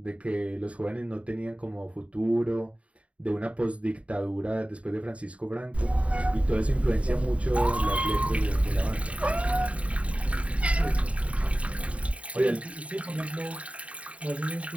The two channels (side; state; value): left; late; 0.065 ms